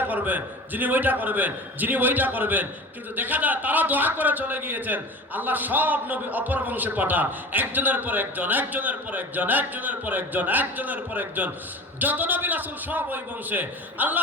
করবেন, যিনি ওইটা করবেন, যিনি ওইটা করবেন। কিন্তু দেখা যায় তারা দোয়া করে চলে গিয়েছেন, আল্লাহ সব নবী অপর বংশে পাঠান, একজনের পর একজন, একজনের পর একজন, একজনের পর একজন, একজনের পর একজন, যত নবী রাসূল সব ওই বংশে।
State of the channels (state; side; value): normal; both; correlation 0.35